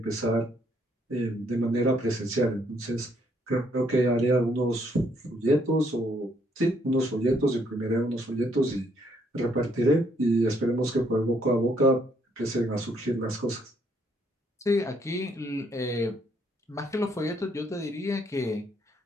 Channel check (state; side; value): normal; both; correlation 0.70